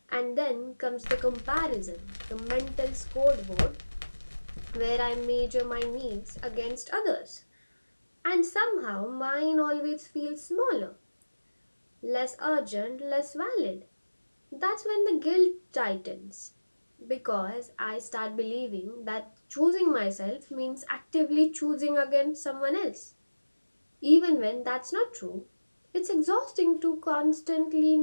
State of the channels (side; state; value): both; inverted; correlation -1.00